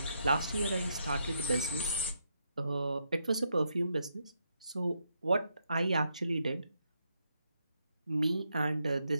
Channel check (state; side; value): inverted; both; correlation -0.79